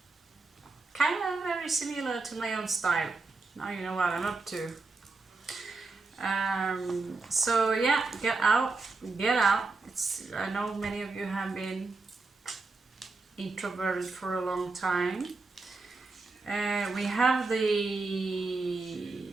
Kind of very similar to my own style. Now you know what I'm up to. So yeah, get out. I know many of you have been introverted for a long time. We have the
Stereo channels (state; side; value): quieter; left; 3.8 dB